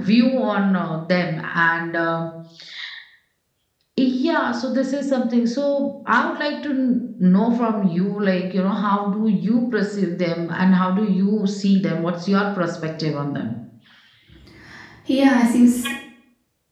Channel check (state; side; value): identical; both; correlation 1.00